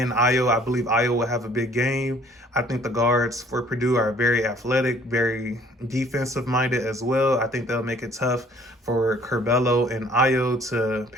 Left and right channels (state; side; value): normal; both; correlation 0.57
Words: Iowa, I believe Iowa will have a big game. I think the guards for Purdue are very athletic, very defensive-minded as well. I think they'll make it tough for Curbelo and Ayo to